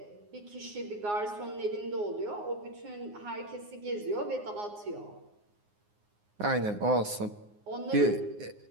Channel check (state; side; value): late; left; 9.6 ms